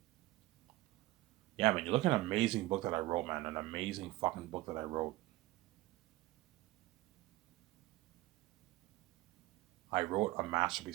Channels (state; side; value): quieter; left; 18.3 dB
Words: Yeah, man, you're looking at an amazing book that I wrote, man. An amazing fucking book that I wrote. I wrote a